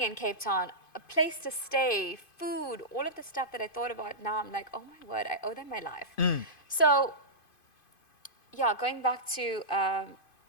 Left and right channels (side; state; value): right; late; 2.5 ms